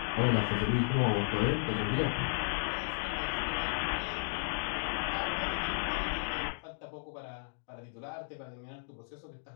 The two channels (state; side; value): silent; right; digital silence